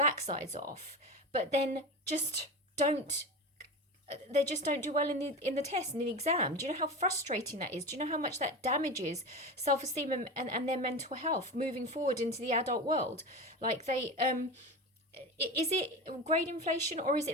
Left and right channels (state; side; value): normal; both; correlation 0.25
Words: off, but then don't just don't do well in the test, in the exam? Do you know how frustrating that is? Do you know how much that damages self-esteem and their mental health moving forward into the adult world? Like they is it grade inflation or is